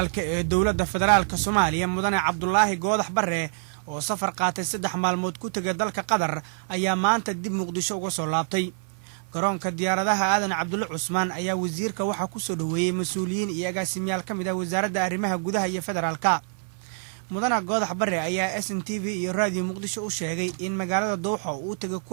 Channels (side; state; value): left; silent; 56 dB below the other